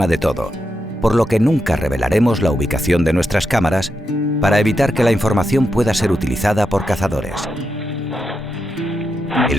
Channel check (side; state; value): both; normal; correlation 0.85